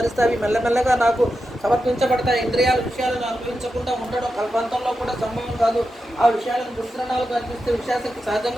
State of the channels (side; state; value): both; normal; correlation 0.89